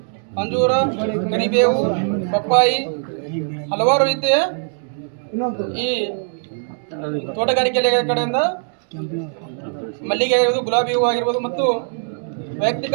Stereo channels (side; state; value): left; silent; digital silence